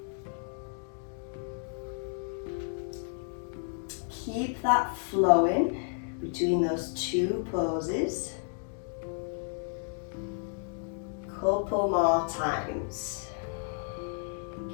Keep that flowing between those two poses. Couple more times.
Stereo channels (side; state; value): right; silent; 56 dB below the other